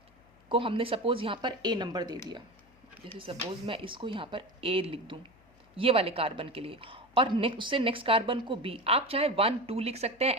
को हमने सपोज यहाँ पर A नंबर दे दिया। जैसे सपोज मैं इसको यहाँ पर A लिख दूँ ये वाले कार्बन के लिए, और उससे नेक्स्ट कार्बन को B, आप चाहे 1 2 लिख सकते हैं,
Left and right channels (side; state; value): left; noise; hum, 30 dB below the sound